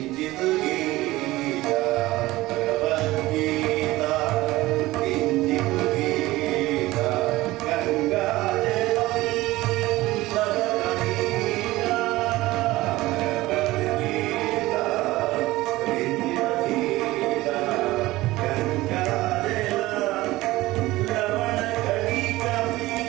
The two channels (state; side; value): quieter; left; 18.3 dB